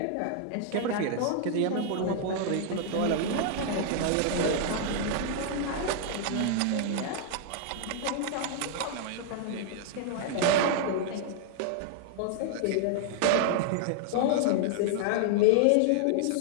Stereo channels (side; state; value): both; different; correlation 0.00